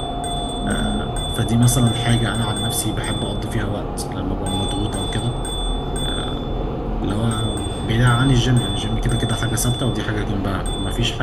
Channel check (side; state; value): both; identical; correlation 1.00